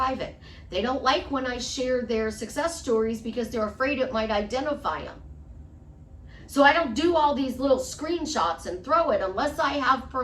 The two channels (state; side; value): identical; both; correlation 1.00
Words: They don't like when I share their success stories because they're afraid it might identify them. So I don't do all these little screenshots and throw it unless I have